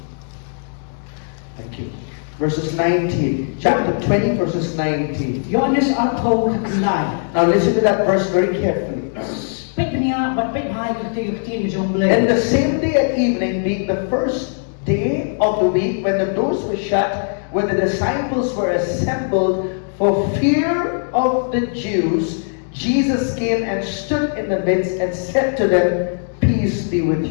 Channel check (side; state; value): right; silent; digital silence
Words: Thank you. Verses 19. Chapter 20, verses 19. Now listen to that verse very carefully. And the same day at evening, being the first day of the week, when the doors were shut, when the disciples were assembled for fear of the Jews, Jesus came and stood in the midst and said to them, "Peace be with